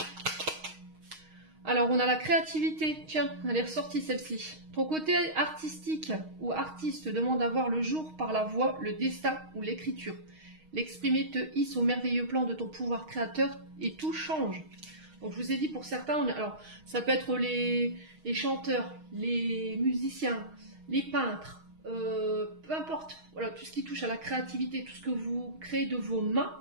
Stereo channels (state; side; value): late; left; 6.4 ms